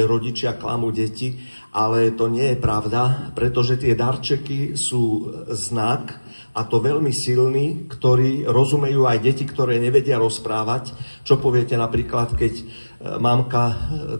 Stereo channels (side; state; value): both; inverted; correlation -1.00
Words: rodičia klamú deti, ale to nie je pravda, pretože tie darčeky sú znak, a to veľmi silný, ktorý rozumejú aj deti, ktoré nevedia rozprávať. Čo poviete napríklad, keď mamka